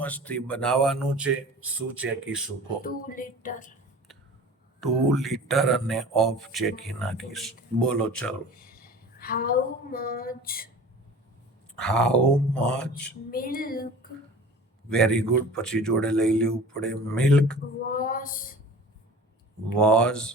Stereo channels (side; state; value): both; normal; correlation 0.41